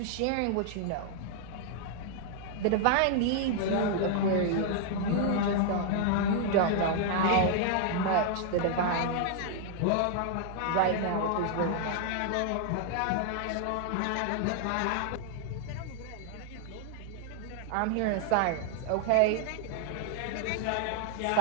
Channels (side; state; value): both; different; correlation 0.00